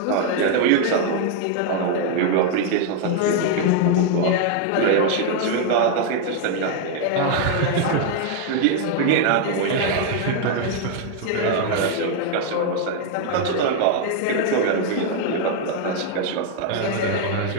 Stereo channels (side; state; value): both; different; correlation 0.00